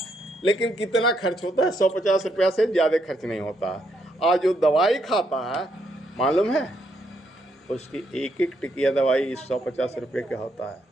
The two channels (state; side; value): normal; both; correlation 0.76